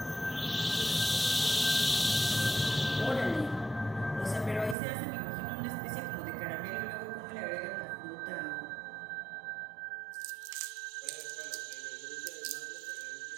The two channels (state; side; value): drops out; left; at 4.8 s